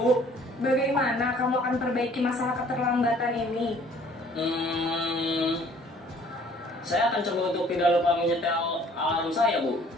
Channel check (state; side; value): normal; both; correlation 0.56